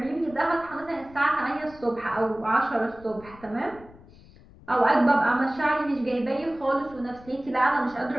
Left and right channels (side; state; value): left; noise; rumble, 22 dB below the sound